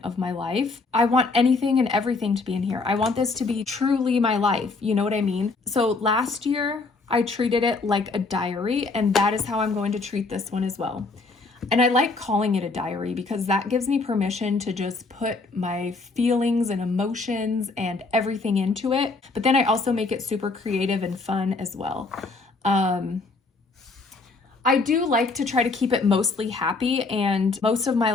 of my life. I want anything and everything to be in here. I want this to be truly my life. You know what I mean? So last year I treated it like a diary, and that is how I'm going to treat this one as well. And I like calling it a diary because that gives me permission to just put my feelings and emotions and everything into it. But then I also make it super creative and fun as well. I do like to try to keep it mostly happy, and most of my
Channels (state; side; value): quieter; right; 3.8 dB